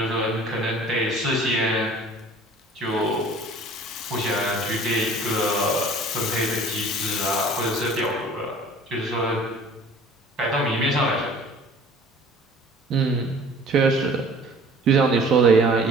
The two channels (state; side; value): normal; both; correlation 0.48